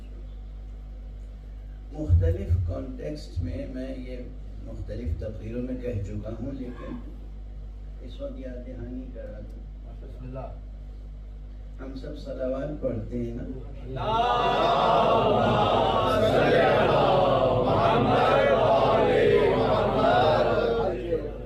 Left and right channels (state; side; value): identical; both; correlation 1.00